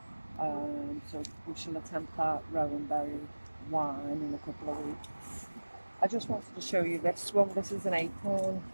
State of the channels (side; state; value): both; inverted; correlation -1.00